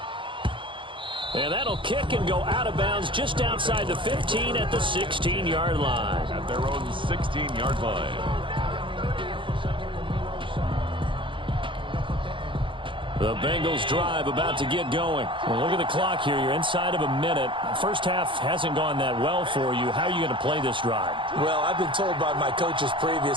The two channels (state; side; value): late; left; 0.24 ms